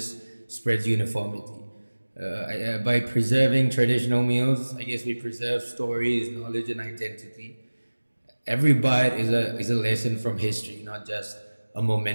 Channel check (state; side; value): inverted; both; correlation -1.00